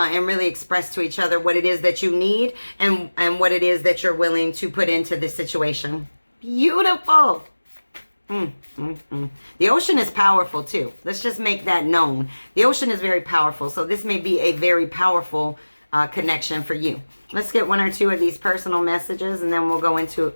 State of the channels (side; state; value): both; inverted; correlation -1.00